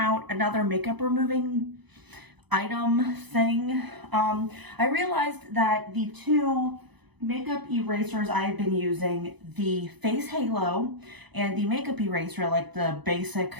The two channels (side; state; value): left; late; 0.99 ms